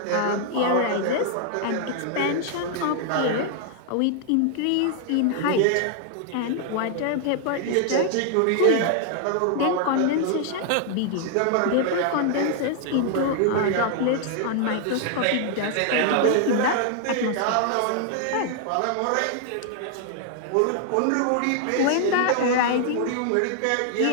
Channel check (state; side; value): different; both; correlation 0.00